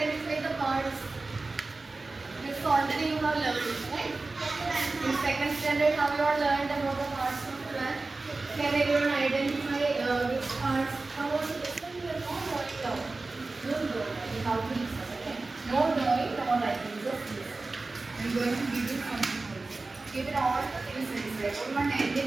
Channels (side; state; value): left; quieter; 3.5 dB